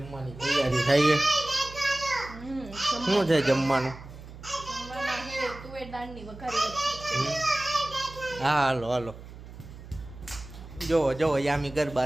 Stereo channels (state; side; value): noise; right; hum, 15 dB below the sound